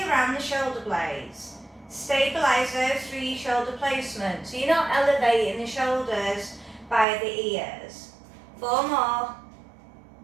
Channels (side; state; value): left; drops out; at 7.1 s